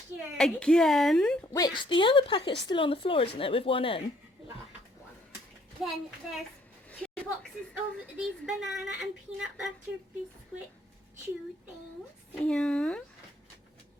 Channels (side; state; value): both; normal; correlation 0.65